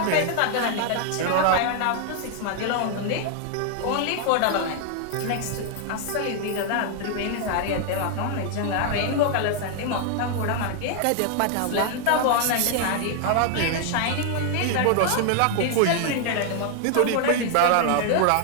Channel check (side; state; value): both; different; correlation 0.00